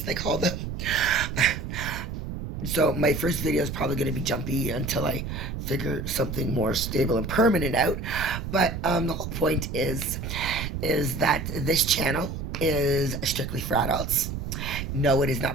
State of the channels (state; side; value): noise; right; rumble, 5 dB below the sound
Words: they call them. So my first video is probably going to be jumpy until I figure something more stable and permanent out. But the whole point is that this channel is strictly for adults. No, it is